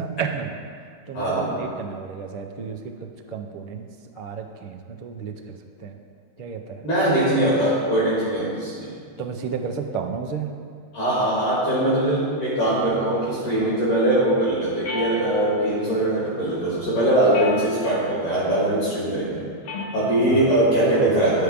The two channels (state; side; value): late; right; 14 ms